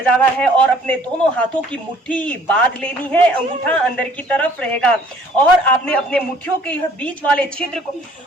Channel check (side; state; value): both; normal; correlation 0.56